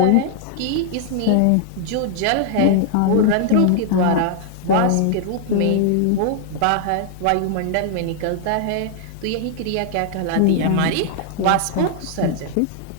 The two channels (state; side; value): different; both; correlation 0.00